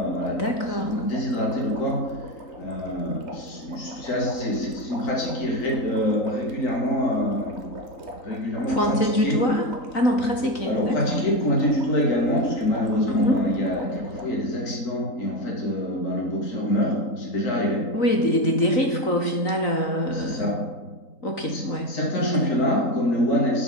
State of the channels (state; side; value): late; right; 3.9 ms